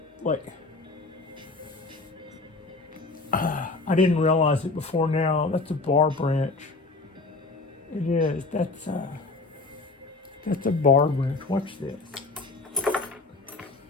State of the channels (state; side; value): quieter; right; 3.5 dB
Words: I didn't realize it before now. That's a bar branch. It is. That's a bar branch. Watch this.